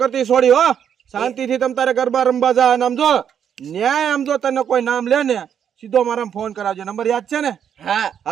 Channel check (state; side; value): quieter; left; 8.5 dB